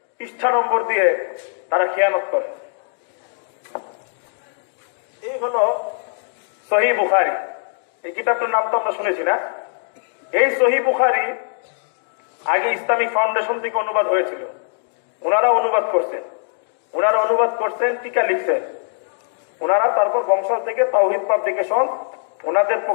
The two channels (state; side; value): silent; right; digital silence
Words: পৃষ্ঠা নম্বর দিয়ে তারা খেয়ানত করে। এই হলো সহিহ বুখারী। এই কিতাবটার নাম তো আমরা শুনেছি না? এই সহিহ বুখারী আগে ইসলামিক ফাউন্ডেশন থেকে অনুবাদ হয়েছিল, ওনারা অনুবাদ করছেন, টিকা লিখছেন ওনারা, তারপর বংশাল থেকে তাওহীদ পাবলিকেশন ওনাদের